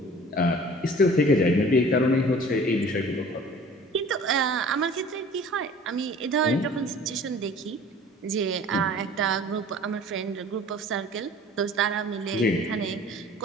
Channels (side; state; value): both; normal; correlation 0.47